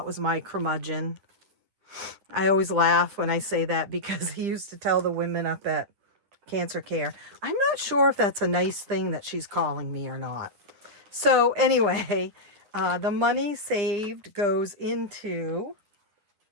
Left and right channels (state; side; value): late; left; 9.8 ms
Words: was my curmudgeon. I always laugh when I say that because he used to tell the women up at Cancer Care. I'm not sure if that's a nice thing that she's calling me or not. So anyway, the money saved goes into